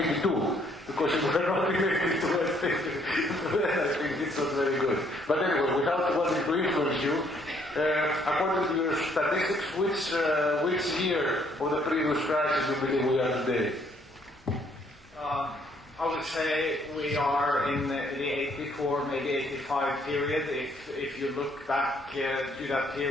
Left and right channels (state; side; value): normal; both; correlation 0.66